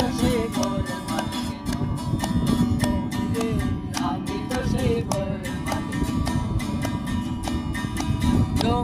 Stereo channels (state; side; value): identical; both; correlation 1.00